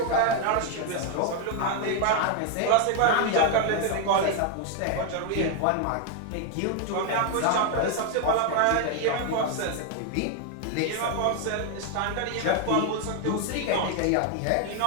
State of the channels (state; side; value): different; both; correlation 0.00